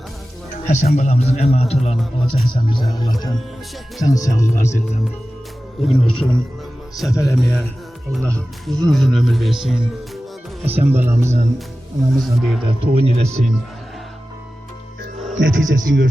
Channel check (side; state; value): both; normal; correlation 0.95